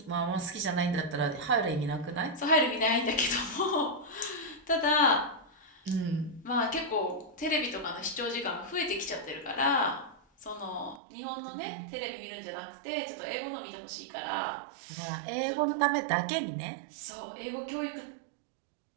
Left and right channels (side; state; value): left; drops out; at 11.0 s